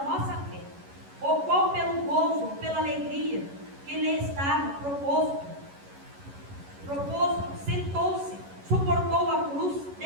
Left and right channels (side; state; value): left; late; 11 ms